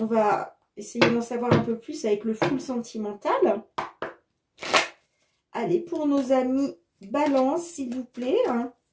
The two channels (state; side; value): identical; both; correlation 1.00